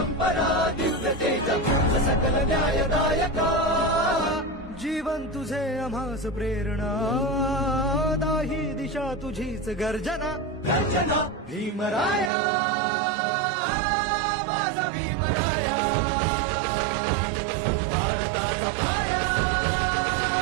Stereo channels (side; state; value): left; drops out; at 12.3 s